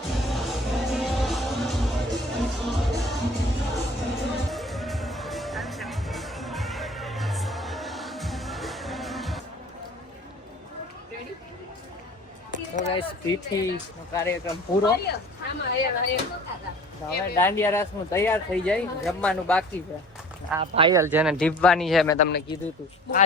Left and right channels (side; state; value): both; normal; correlation 0.47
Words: પીઠીનો કાર્યક્રમ પૂરો. હવે દાંડિયા રાસ નું તૈયાર થઈ જાય, જમવાનું બાકી છે. આ પાયલ જેને ઢીબવાની છે મેં તમને કીધું તું.